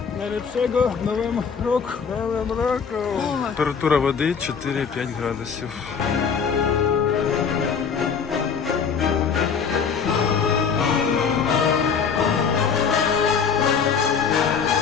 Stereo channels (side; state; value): right; quieter; 6.3 dB